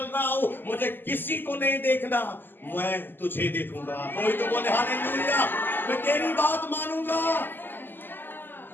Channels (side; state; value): right; late; 0.094 ms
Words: रहा हूं, मुझे किसी को नहीं देखना, मैं तुझे देखूंगा। कोई तो बोले हालेलुया, मैं तेरी बात मानूंगा।